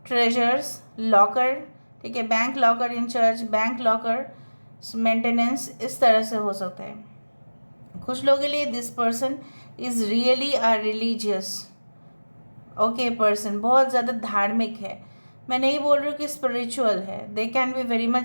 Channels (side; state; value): both; inverted; correlation -1.00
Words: treasures, locker, ठीक है, bank locker incharge, bank locker maintenance, इस तरह से हो सकता है। कुछ लोगों के लिए this person is really a religious okay person, बहुत ज़्यादा धार्मिक है। मैं नहीं बोल रही हूँ कि स्पिरिचुअल है, they can be very